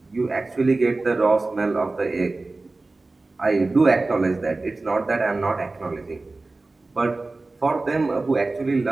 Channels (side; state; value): left; quieter; 3.3 dB